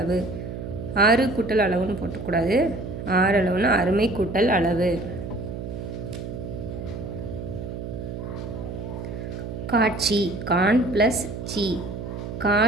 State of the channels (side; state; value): right; noise; hum, 7 dB below the sound